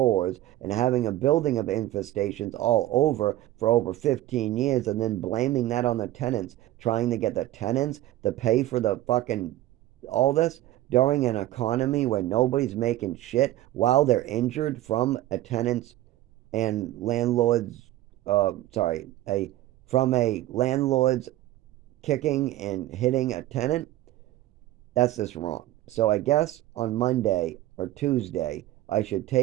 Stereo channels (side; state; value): left; quieter; 15.2 dB